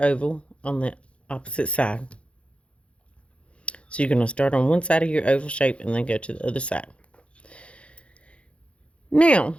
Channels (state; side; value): late; right; 0.060 ms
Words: on the opposite side. So you're going to start on one side of your oval shape and then go to the other side. Now,